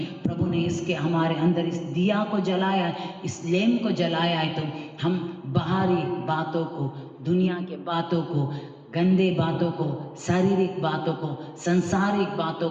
प्रभु ने इसके हमारे अंदर इस दिया को जलाया है, इस लैंप को जलाया है, तो हम बाहरी बातों को, दुनिया के बातों को, गंदे बातों को, शारीरिक बातों को, सांसारिक बातों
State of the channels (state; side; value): identical; both; correlation 1.00